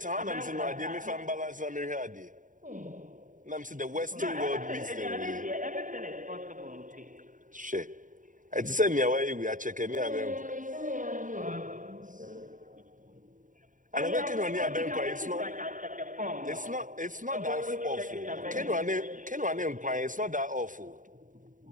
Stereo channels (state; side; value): late; left; 0.38 ms